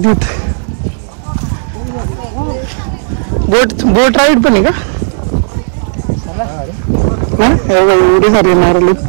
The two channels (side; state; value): left; silent; digital silence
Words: बोट राईड पण आहे का? एवढी सारी नारळ